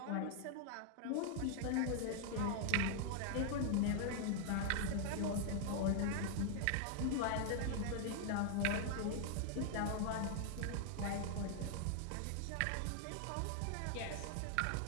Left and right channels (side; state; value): both; different; correlation 0.00